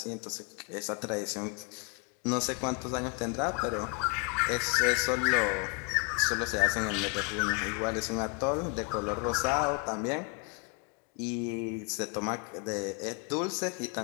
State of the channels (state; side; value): quieter; right; 33.3 dB